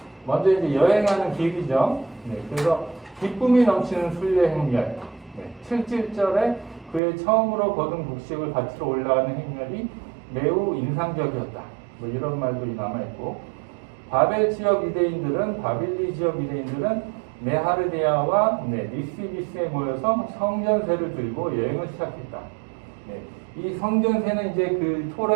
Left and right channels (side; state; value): left; drops out; at 7.0 s